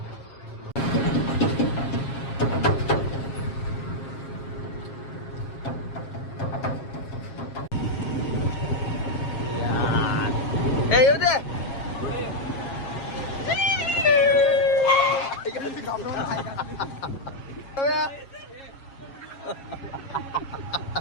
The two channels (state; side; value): late; right; 7.2 ms